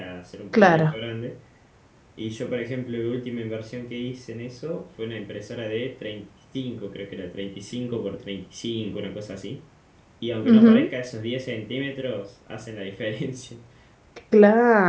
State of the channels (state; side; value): identical; both; correlation 1.00